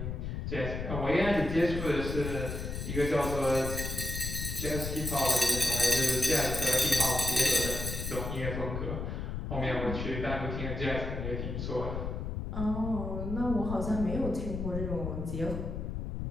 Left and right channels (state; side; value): noise; left; rumble, 4 dB below the sound